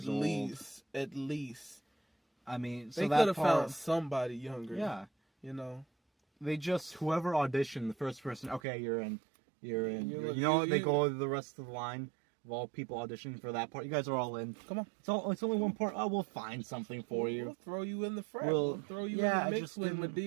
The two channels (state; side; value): drops out; left; at 8.6 s